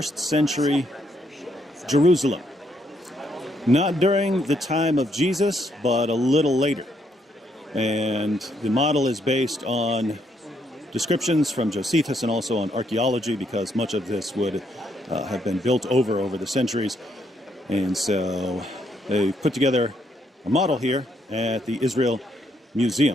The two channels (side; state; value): both; normal; correlation 0.74